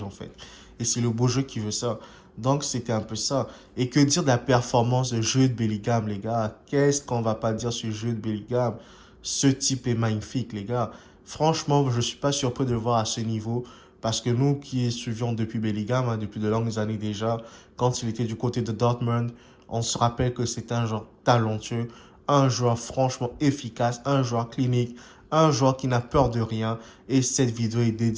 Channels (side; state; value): both; identical; correlation 1.00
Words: en fait. Et c'est le beau jeu qui veut ça. Donc, c'était un peu ça. Et que dire de la performance de jeu de Bellingham, les gars? Qu'est-ce qu'on va pas dire sur le jeu de Bellingham? Ce type est magnifique, les gars. Franchement, je ne suis pas surpris de le voir à ce niveau. Parce que nous qui suivions depuis Bellingham, hein, depuis de longues années déjà, quand il était du côté de Dortmund, on se rappelle que c'est un joueur talentueux, un joueur franchement efficace, un joueur clinique, un joueur qui n'a peur de rien. Et cette vidéo est